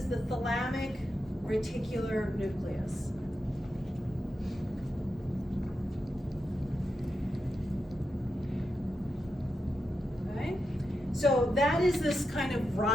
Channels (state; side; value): normal; both; correlation 0.87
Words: the thalamic reticular nucleus. Okay? So that is this kind of